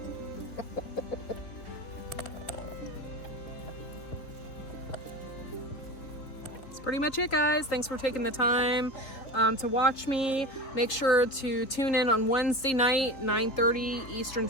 Pretty much it, guys. Thanks for taking the time to watch me. Make sure to tune in on Wednesday night, 9:30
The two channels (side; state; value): right; late; 3.7 ms